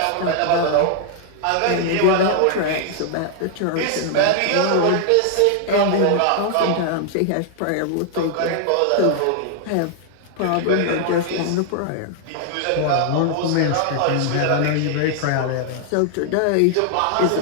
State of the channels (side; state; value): both; different; correlation 0.00